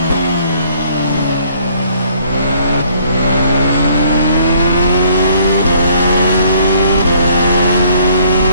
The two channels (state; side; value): inverted; both; correlation -0.62